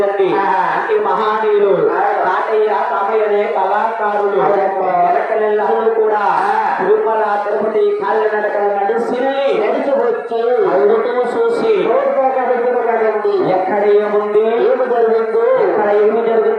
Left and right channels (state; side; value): identical; both; correlation 1.00